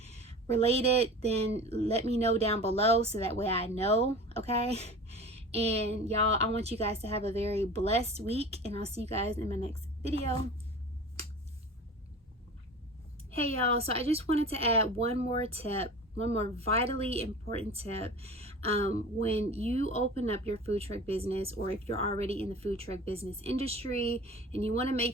related, then let me know down below so that way I know, okay? And y'all, I want you guys to have a very blessed week, and I'll see you guys in my next video. Hey y'all, so I just wanted to add one more vitally important tip. When you open up your food truck business, or if you're already in the food truck business industry and you want to make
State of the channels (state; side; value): normal; both; correlation 0.37